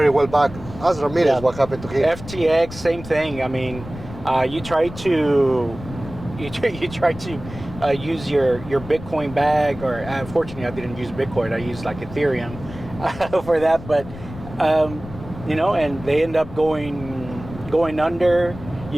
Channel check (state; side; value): noise; left; rumble, 14 dB below the sound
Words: well backed. As Ramirez, what happened to him? FTX, same thing. I mean, you try to use your Bitcoin bag, or unfortunately I didn't use Bitcoin. I used like Ethereum for that, but and they end up going under.